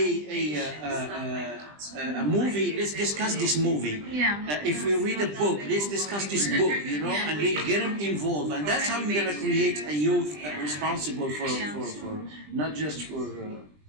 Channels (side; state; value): left; late; 20 ms